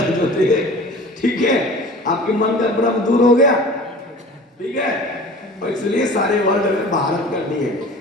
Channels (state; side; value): normal; both; correlation 0.41